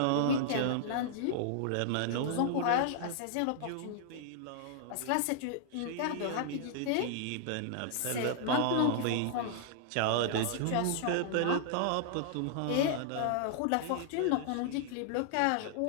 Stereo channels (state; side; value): different; both; correlation -0.01